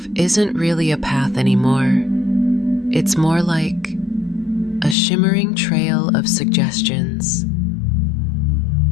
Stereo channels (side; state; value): right; drops out; at 5.0 s